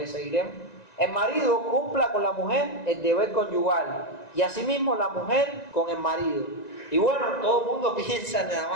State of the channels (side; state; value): right; late; 1.9 ms